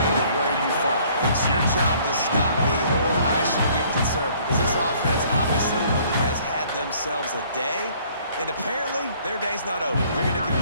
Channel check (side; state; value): both; inverted; correlation -0.59